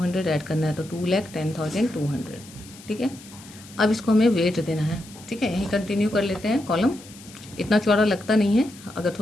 ऐड करना है तो 2,10,200। ठीक है, अब इसको हमें वेट देना है। ठीक है, यहीं कंटिन्यू कर लेते हैं, कॉलम इतना चौड़ा लगता नहीं है, अगर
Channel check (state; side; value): noise; left; hiss, 20 dB below the sound